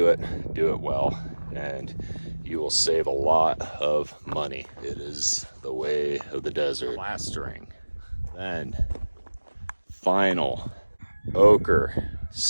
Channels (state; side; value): inverted; both; correlation -1.00